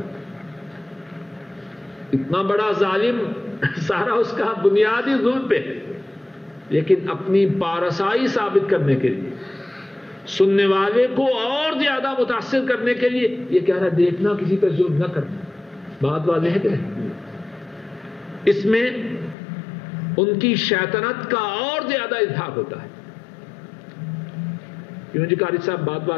اتنا بڑا ظالم، سارا اس کا بنیادی ظلم پہ ہے، لیکن اپنی پارسائی ثابت کرنے کے لیے، سننے والے کو اور زیادہ متاثر کرنے کے لیے یہ کہہ رہا ہے دیکھنا کسی پہ ظلم نہ کرنا۔ بات واضح ہے کہ نہیں؟ اس میں ان کی شیطنت کا اور زیادہ اظہار ہوتا ہے۔ کیوں جی قاری صاحب، بات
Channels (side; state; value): right; drops out; at 19.4 s